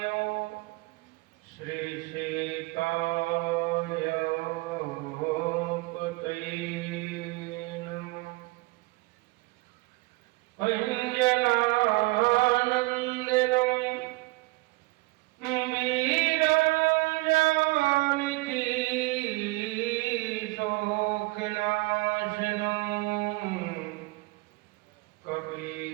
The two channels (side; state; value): left; quieter; 23.1 dB